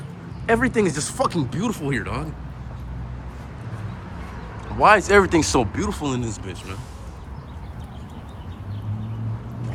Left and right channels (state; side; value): identical; both; correlation 1.00